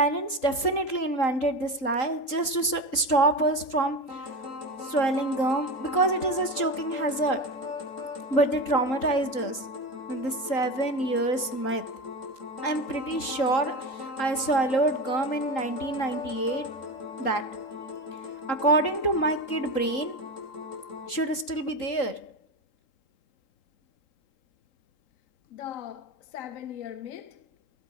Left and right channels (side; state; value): right; late; 3.8 ms